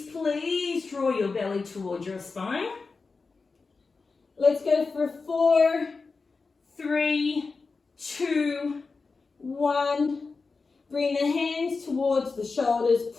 please draw your belly towards your spine. Let's go for 4, 3, 2, 1. Bring the hands towards the shoulders.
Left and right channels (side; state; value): right; quieter; 4.3 dB